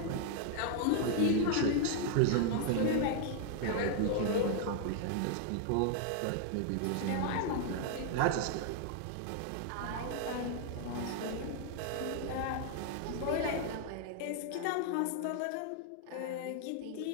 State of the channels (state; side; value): different; both; correlation 0.00